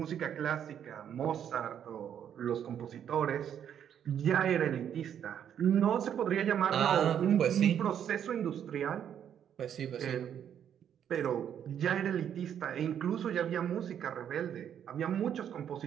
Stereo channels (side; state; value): left; quieter; 9.2 dB